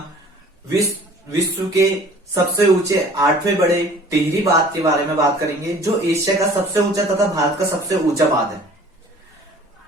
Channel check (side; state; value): both; normal; correlation 0.49